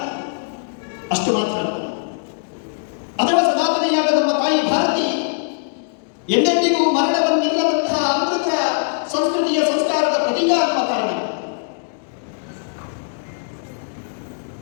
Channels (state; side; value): silent; right; digital silence